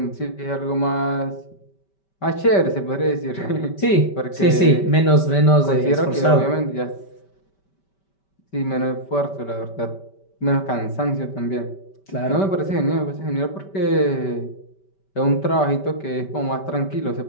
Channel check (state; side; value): late; right; 5.2 ms